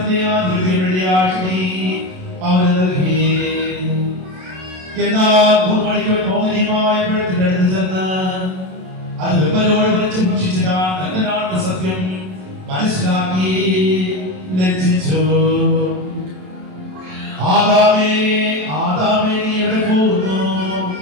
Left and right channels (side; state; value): left; late; 27 ms